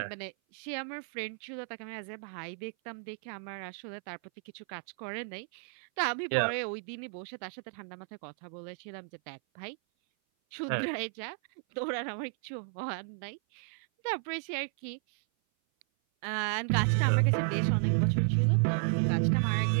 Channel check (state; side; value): silent; left; 56 dB below the other